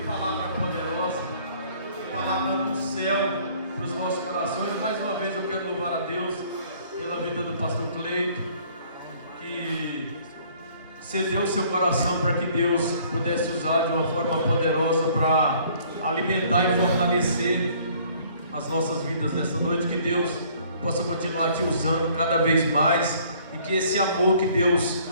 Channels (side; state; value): both; inverted; correlation -0.58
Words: palavra poderosa, que palavra do céu para os nossos corações. Mais uma vez eu quero louvar a Deus pela vida do pastor Cleito, que cedeu seu coração para que Deus pudesse usar de uma forma poderosa para alimentar e fortalecer as nossas vidas nessa noite. Que Deus possa continuar te usando cada vez mais e que esse amor que Deus